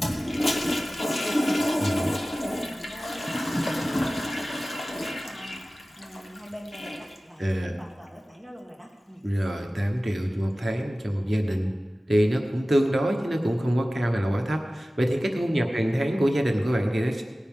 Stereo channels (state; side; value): normal; both; correlation 0.97